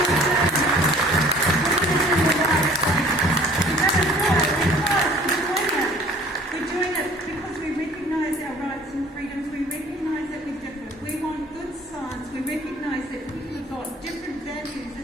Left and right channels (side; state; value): both; normal; correlation 0.52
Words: we're doing it because we recognise our rights and freedoms, we recognise that we're different, we want good science, we recognise that people have got different values